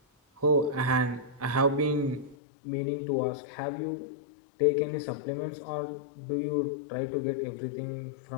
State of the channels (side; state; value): right; drops out; at 2.4 s